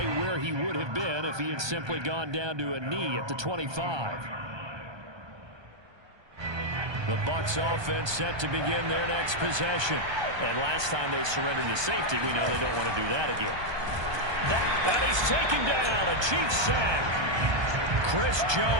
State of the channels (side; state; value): left; late; 1.2 ms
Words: where he would have been if he had simply gone down to a knee at the 25. The Bucs offense set to begin their next possession. And last time they surrendered to safety, we know they don't want to do that again. That he's taken down, a Chiefs sack. Chris